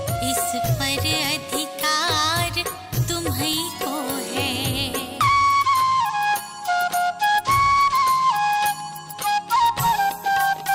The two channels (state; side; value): identical; both; correlation 1.00